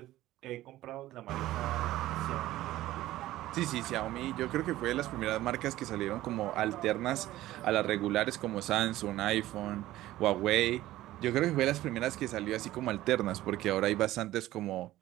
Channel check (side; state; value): left; quieter; 15.5 dB